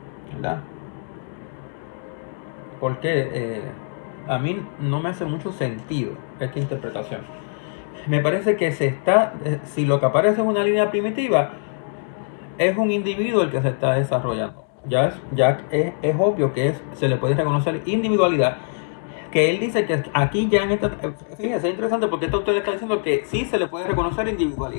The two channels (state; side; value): silent; right; 63 dB below the other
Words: ¿Verdad? Porque a mí no me hace mucho sentido esta interpretación. Me parece que si lo que aparece es una línea primitiva, es un individuo el que se está desarrollando. Ya es obvio que se le puede reconocer individualidad, que él dice que aquí ya en esta... Fíjense, es interesante porque esto usted está diciendo que sí se le puede reconocer